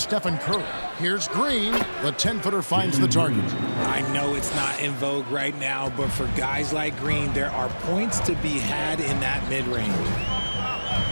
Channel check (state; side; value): inverted; both; correlation -1.00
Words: Curry. Here's Green. The 10-footer finds the target. I know it's not in vogue right now, but for guys like Green, there are points to be had in that mid-range.